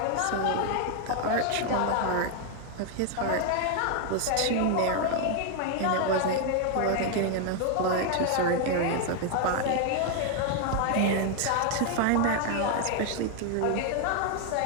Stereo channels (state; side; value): different; both; correlation 0.01